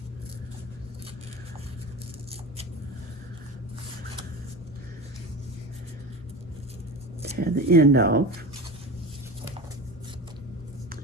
Tear the end off.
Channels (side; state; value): both; normal; correlation 0.30